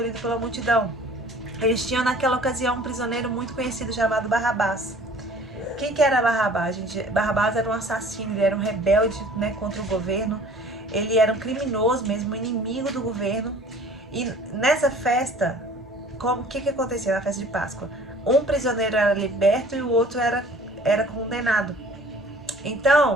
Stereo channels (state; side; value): normal; both; correlation 0.50